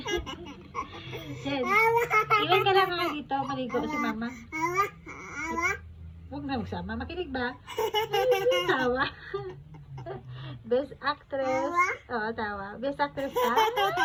Chen. Ilan ka lang nga dito. Maligo si Mama. Huwag na magsama. Makinig ba? Tawa. Best actress. Oo, tawa. Best actress ka?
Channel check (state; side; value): identical; both; correlation 1.00